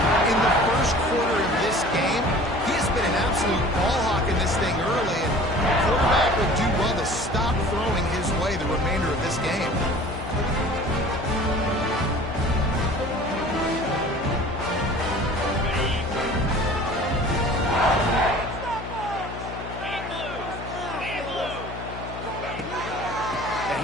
in the first quarter of this game. He has been an absolute ball hawk in this thing early, and the quarterback would do well to stop throwing his way the remainder of this game. The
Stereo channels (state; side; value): noise; left; hum, 10 dB below the sound